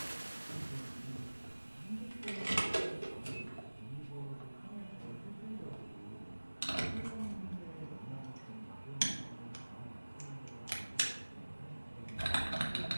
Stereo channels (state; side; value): inverted; both; correlation -1.00